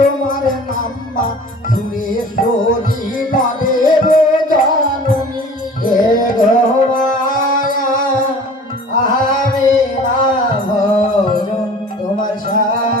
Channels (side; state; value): both; normal; correlation 0.45